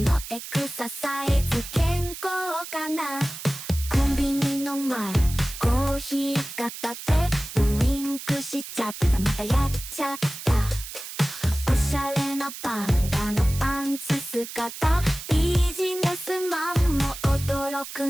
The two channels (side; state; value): right; noise; hiss, 11 dB below the sound